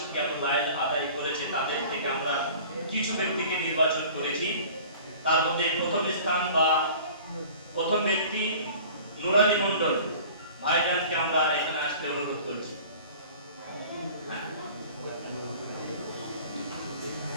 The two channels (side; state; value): both; inverted; correlation -0.44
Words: কিয়ামুল লাইল আদায় করেছে, তাদের থেকে আমরা কিছু ব্যক্তিকে নির্বাচন করেছি। তার মধ্যে প্রথম স্থান বা প্রথম ব্যক্তি নুরানি মণ্ডল ভাইজানকে আমরা এখানে আসতে অনুরোধ করছি।